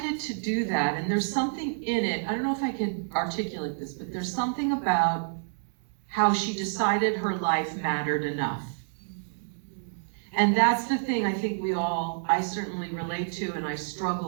to do that, and there's something in it, I don't know if I could articulate this, but there's something about how she decided her life mattered enough. And that's the thing I think I certainly relate to and I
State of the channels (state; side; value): silent; left; digital silence